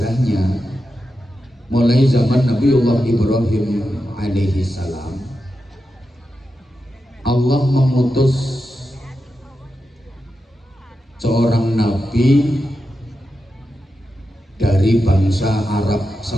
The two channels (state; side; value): normal; both; correlation 0.89